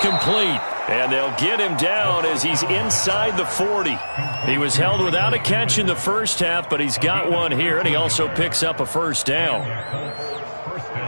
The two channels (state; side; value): inverted; both; correlation -1.00